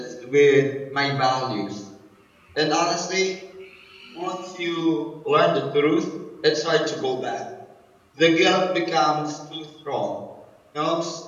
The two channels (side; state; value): both; identical; correlation 1.00